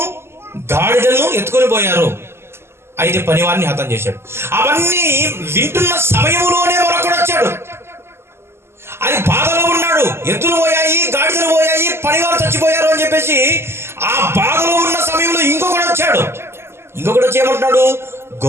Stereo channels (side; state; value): left; late; 0.12 ms